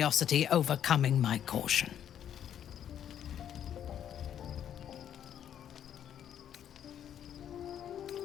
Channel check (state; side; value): quieter; right; 9.7 dB